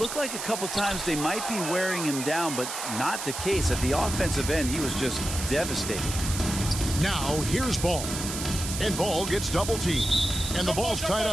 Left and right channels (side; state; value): right; noise; hiss, 6 dB below the sound